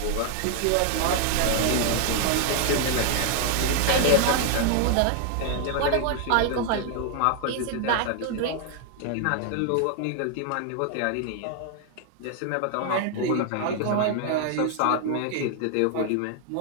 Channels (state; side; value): different; both; correlation 0.00